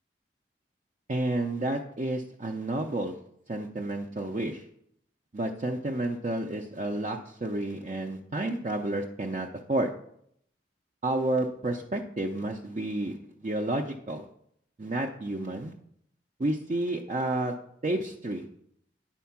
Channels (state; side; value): normal; both; correlation 0.59